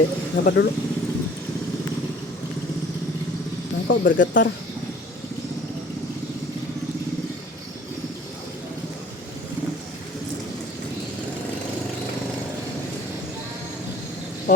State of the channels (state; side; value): normal; both; correlation 0.50